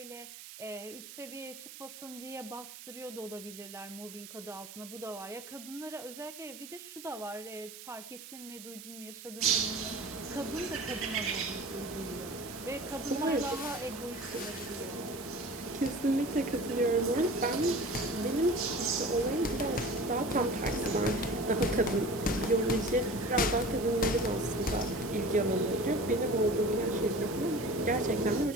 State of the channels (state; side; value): noise; right; hiss, 14 dB below the sound